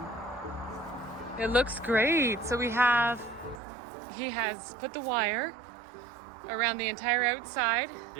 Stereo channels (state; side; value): drops out; left; at 3.6 s